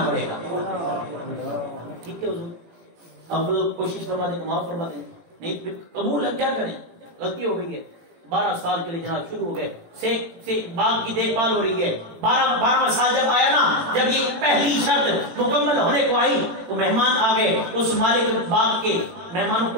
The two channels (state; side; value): late; left; 18 ms